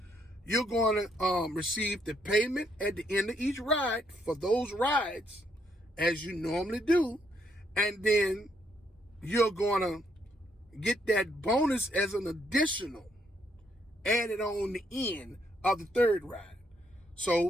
you're going to receive the payment at the end of each ride for those rides, as you normally do, and then you're going to get that bonus as an additional added on the end of the 3rd ride.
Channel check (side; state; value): both; normal; correlation 0.72